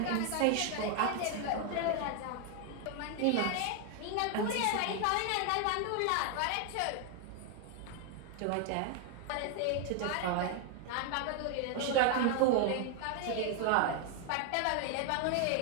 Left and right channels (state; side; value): different; both; correlation 0.00